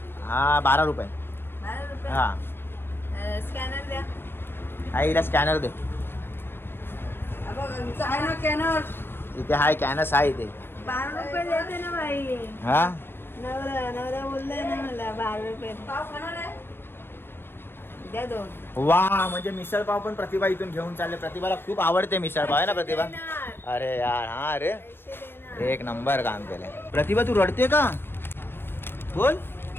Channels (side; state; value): right; late; 0.10 ms